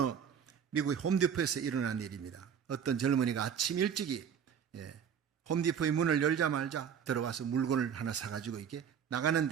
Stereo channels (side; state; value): left; quieter; 7.8 dB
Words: 미국의 홈디포에서 일어난 일입니다. 어떤 젊은이가 아침 일찍이 홈디포의 문을 열자마자 들어와서 물건을 하나 사가지고 이렇게